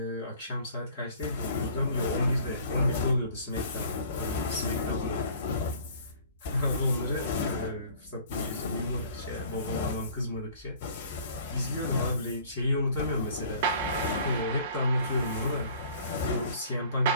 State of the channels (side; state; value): both; inverted; correlation -0.51